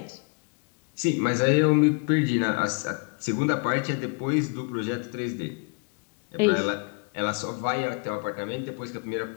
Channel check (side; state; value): right; quieter; 37.3 dB